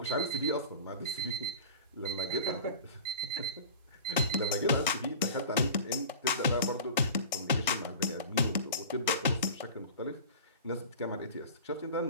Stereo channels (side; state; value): both; inverted; correlation -0.37